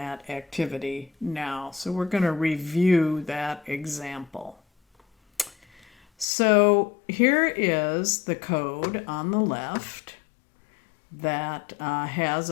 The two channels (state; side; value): drops out; right; at 6.2 s